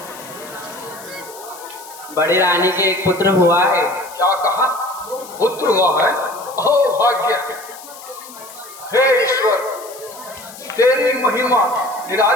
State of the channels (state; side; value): noise; left; hiss, 17 dB below the sound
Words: बड़ी रानी के एक पुत्र हुआ है। क्या कहा? पुत्र हुआ है? ओ भाग्य! हे ईश्वर, तेरी महिमा